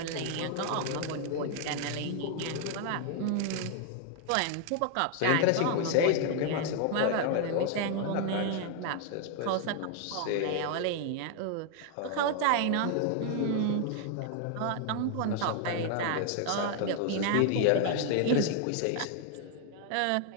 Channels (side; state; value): both; different; correlation 0.00